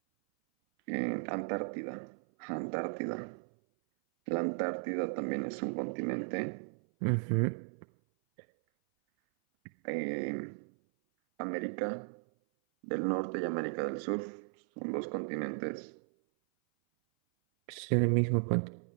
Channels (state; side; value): silent; left; 54 dB below the other